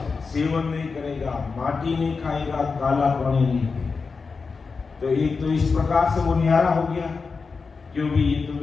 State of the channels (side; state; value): right; quieter; 4.7 dB